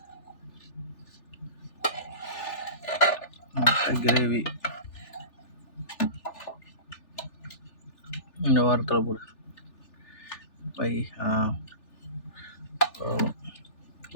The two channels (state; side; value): late; right; 3.4 ms